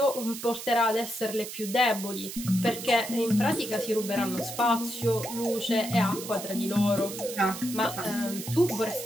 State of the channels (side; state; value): right; noise; hiss, 9 dB below the sound